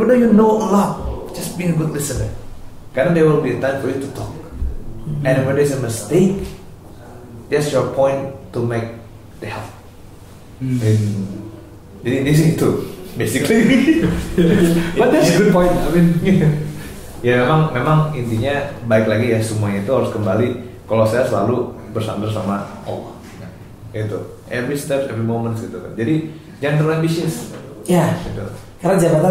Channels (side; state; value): both; identical; correlation 1.00